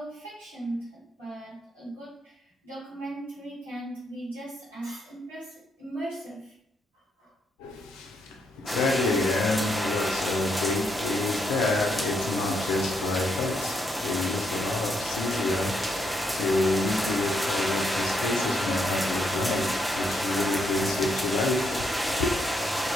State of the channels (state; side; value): normal; both; correlation 0.77